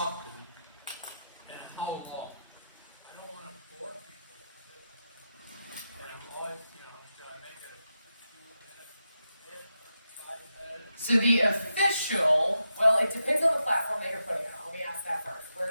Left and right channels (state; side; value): inverted; both; correlation -0.87